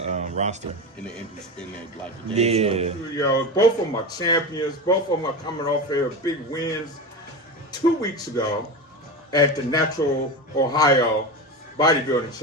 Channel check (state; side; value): normal; both; correlation 0.22